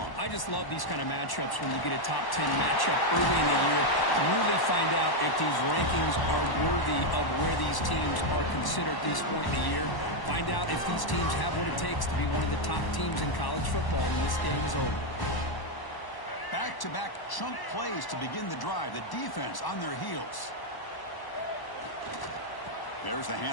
I just love these kind of matchups when you get a top 10 matchup early in the year to really find out if these rankings are worthy of where these teams are considered at this point in the year. Find out if these teams have what it takes to be one of the top teams in college football when this game is over. Back-to-back chunk plays to begin the drive. The defense on their heels. There's the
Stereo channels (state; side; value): late; right; 1.1 ms